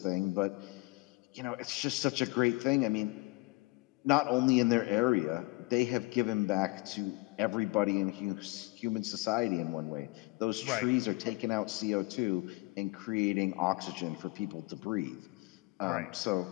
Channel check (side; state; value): right; quieter; 24.1 dB